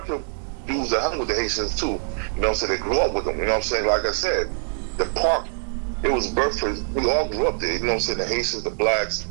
dudes that hung with the Haitians too. You know what I'm saying? They grew up with them. You know what I'm saying? Like I said, the park, it was birthed for, we all grew up there. You know what I'm saying? The Haitians, the blacks,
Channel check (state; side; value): silent; left; digital silence